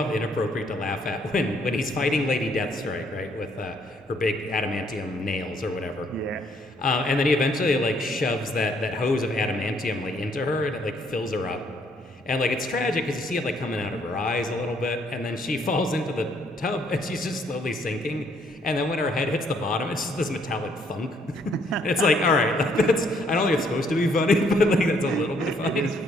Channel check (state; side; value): normal; both; correlation 0.68